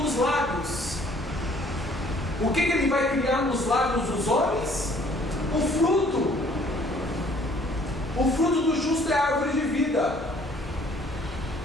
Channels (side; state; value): both; normal; correlation 0.59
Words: dos lábios. O que Ele vai criar nos lábios dos homens? O fruto. O fruto do justo é a árvore de vida.